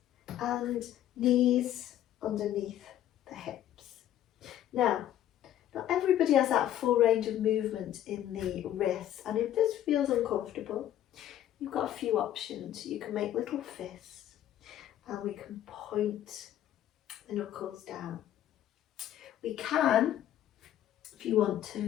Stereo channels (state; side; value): quieter; right; 11.9 dB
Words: And knees underneath the hips. Now, not everybody has that full range of movement in the wrists, and if this feels uncomfortable, you've got a few options. You can make little fists, and we can point the knuckles down. We can, if you want